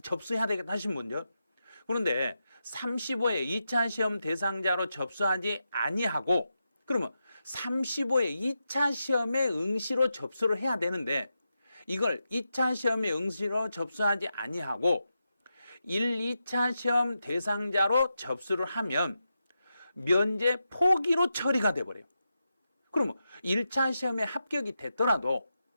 접수해야 되겠다 하신 분요. 그런데 35회 2차 시험 대상자로 접수하지 아니하고, 그러면 35회 2차 시험에 응시로 접수를 해야 되는데 이걸 2차 시험에 응시로 접수하지 아니하고 1, 2차 시험 대상자로 접수를 하면 면제 포기로 처리가 돼버려요. 그러면 1차 시험에 합격이 됐더라도,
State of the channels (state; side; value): inverted; both; correlation -0.88